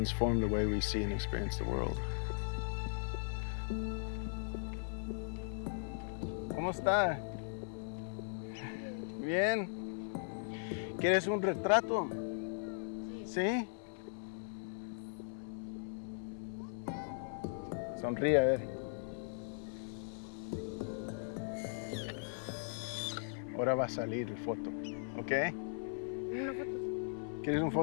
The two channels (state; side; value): silent; right; 52 dB below the other